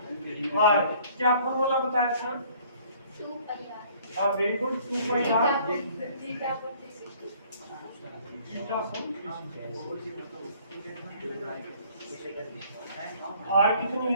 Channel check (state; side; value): inverted; both; correlation -0.57